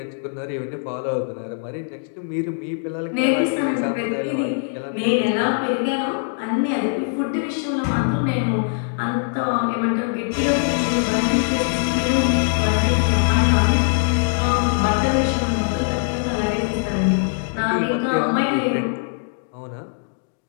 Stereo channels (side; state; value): right; silent; digital silence